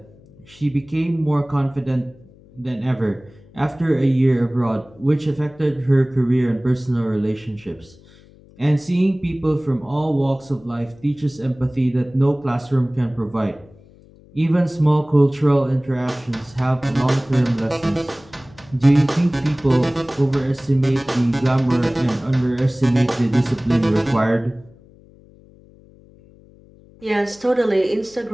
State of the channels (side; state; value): left; noise; hum, 25 dB below the sound